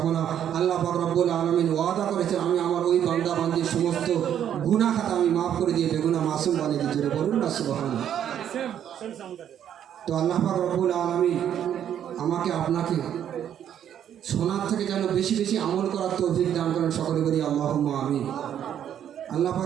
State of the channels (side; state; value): left; quieter; 9.8 dB